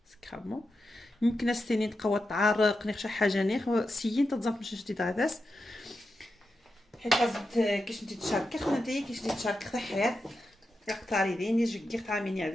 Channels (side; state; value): both; normal; correlation 0.89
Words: سكرامو يمكن استني تقوى تعرق نخ شي حاجه نخ سيين تزام باش شتي داس حيت لازم كيش انت تشاركي خدنا انت كيش انت تشاركي تحيات يقطاري دين يجي كيف تعاميني